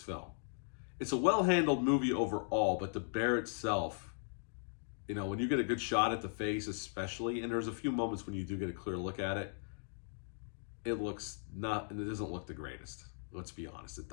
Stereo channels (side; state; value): right; silent; digital silence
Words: film. It's a well-handled movie overall, but the bear itself, when you get a good shot at the face especially, and there's a few moments when you do get a clear look at it, it doesn't look the greatest. Let's be honest, it